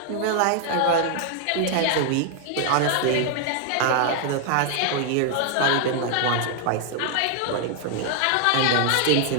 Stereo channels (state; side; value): different; both; correlation 0.00